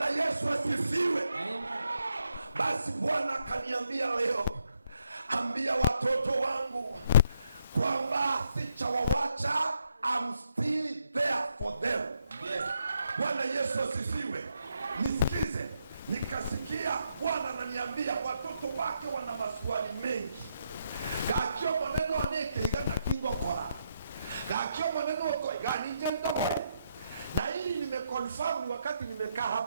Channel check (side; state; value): both; inverted; correlation -0.78